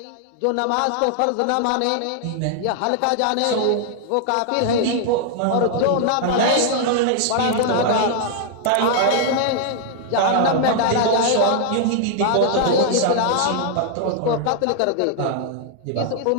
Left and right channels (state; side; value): different; both; correlation -0.01